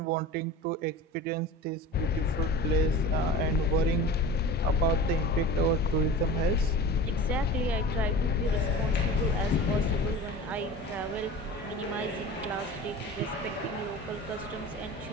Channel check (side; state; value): both; normal; correlation 0.36